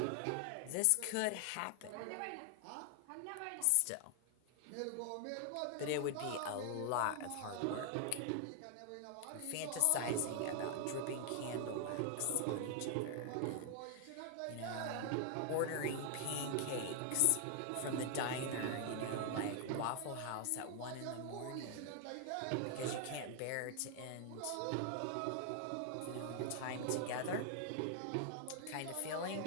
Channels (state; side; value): different; both; correlation 0.00